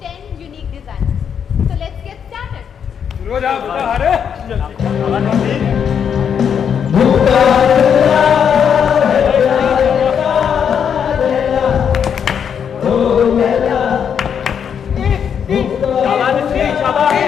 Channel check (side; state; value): right; quieter; 7.7 dB